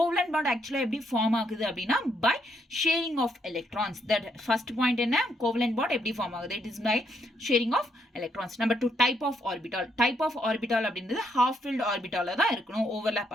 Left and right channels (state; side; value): normal; both; correlation 0.74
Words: பாண்ட் ஆக்சுவலாக எப்படி ஃபார்ம் ஆகுது அப்படின்னா by sharing of electrons. That first point என்ன? கோவலன்ட் பாண்ட் எப்படி ஃபார்ம் ஆகுது? It is by sharing of electrons. Number 2, type of orbital. Type of orbital அப்படின்றது ஹாஃப் ஃபில்ட் ஆர்பிட்டால தான் இருக்கணும், ஓவர்லேப்